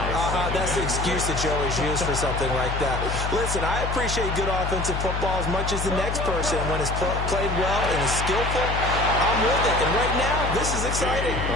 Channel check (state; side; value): noise; left; hum, 3 dB below the sound